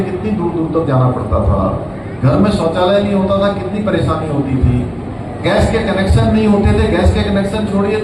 कितनी दूर दूर तक जाना पड़ता था, घर में शौचालय नहीं होता था, कितनी परेशानी होती थी, गैस के कनेक्शन नहीं होते थे, गैस के कनेक्शन छोड़िए,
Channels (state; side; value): identical; both; correlation 1.00